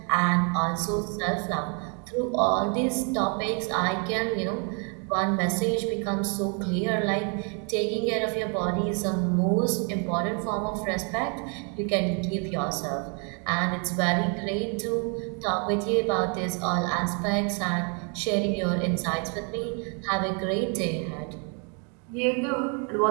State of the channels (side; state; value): left; quieter; 37.6 dB